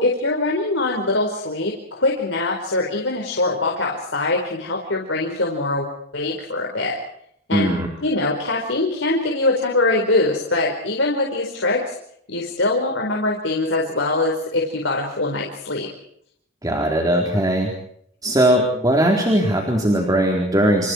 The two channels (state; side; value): normal; both; correlation 0.13